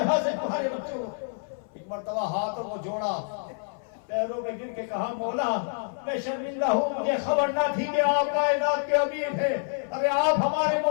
سے تمہارے بچوں کو؟ ایک مرتبہ ہاتھوں کو جوڑا، پیروں میں گر کے کہا مولا میں شرمندہ ہوں، مجھے خبر نہ تھی کہ آپ کائنات کے امیر ہیں، ارے آپ ہمارے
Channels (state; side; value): silent; right; 60 dB below the other